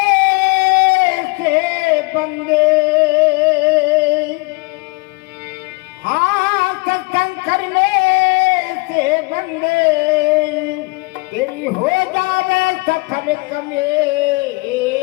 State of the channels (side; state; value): right; quieter; 27.1 dB